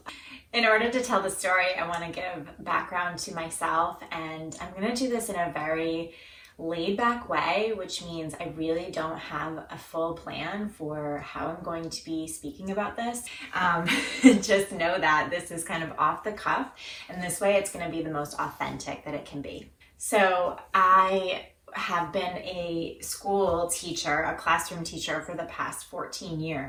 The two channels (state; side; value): identical; both; correlation 1.00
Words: In order to tell the story, I want to give background to myself, and I'm going to do this in a very laid back way, which means I really don't have a full plan for how I'm going to be speaking about this. Just know that this is kind of off the cuff, and this way it's going to be the most authentic that it can be. So I have been a school teacher, a classroom teacher for the past 14